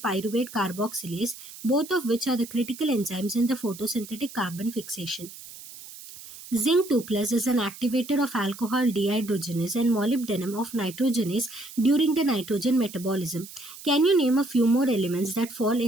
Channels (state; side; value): noise; right; hiss, 16 dB below the sound